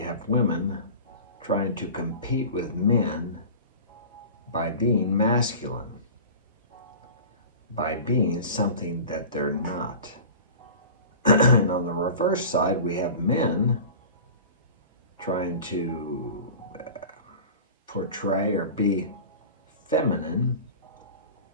women trying to compete with men by being masculine, by being something that they're not. And on the reverse side, we have men trying to portray or be feminine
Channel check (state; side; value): inverted; both; correlation -0.36